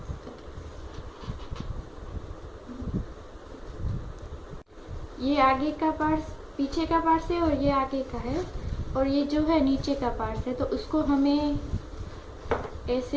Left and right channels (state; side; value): identical; both; correlation 1.00